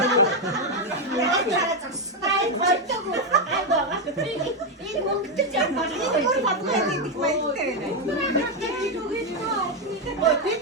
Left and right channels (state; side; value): normal; both; correlation 0.05